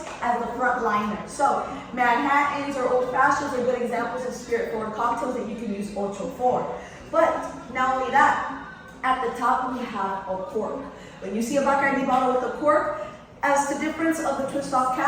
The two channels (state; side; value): identical; both; correlation 1.00